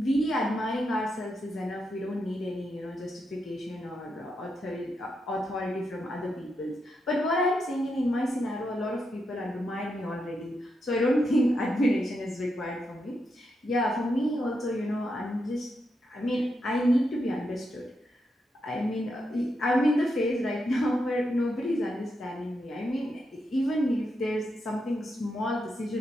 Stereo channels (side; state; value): both; normal; correlation 0.84